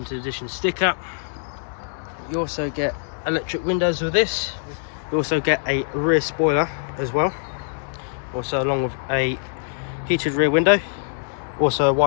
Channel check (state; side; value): silent; right; 63 dB below the other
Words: edition sticker. You also get electric windows with this. You also get a rear spoiler as well, also along with a heated rear window, also a